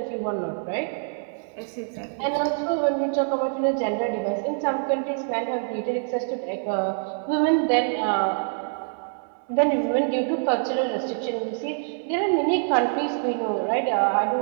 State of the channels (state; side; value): silent; left; 62 dB below the other